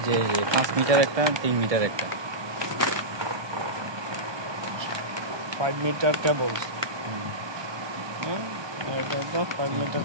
যে 5 মিটার একটা 3 মিটার একটা 5 মিটার কেবল, এটা তো 5 মিটার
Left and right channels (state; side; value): late; left; 1.2 ms